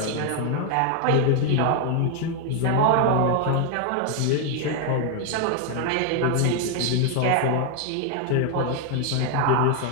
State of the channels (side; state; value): both; different; correlation 0.00